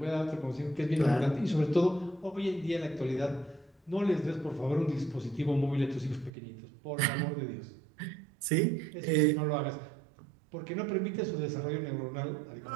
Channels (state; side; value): drops out; left; at 6.3 s